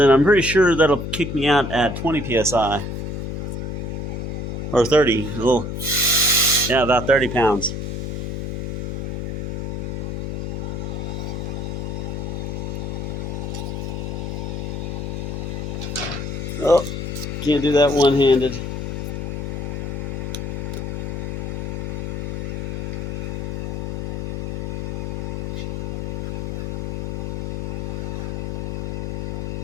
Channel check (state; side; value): noise; left; hum, 3 dB below the sound